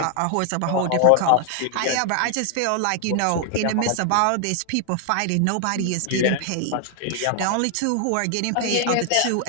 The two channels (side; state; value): both; different; correlation 0.00